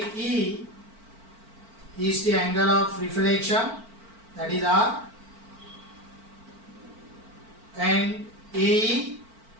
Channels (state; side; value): late; left; 4.5 ms